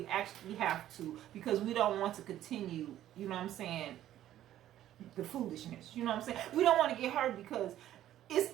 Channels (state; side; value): quieter; left; 12.5 dB